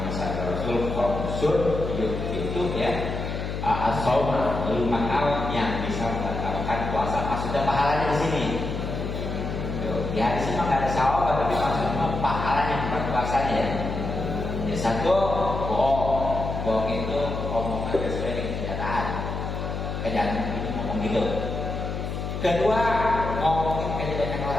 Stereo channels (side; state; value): left; noise; hum, 4 dB below the sound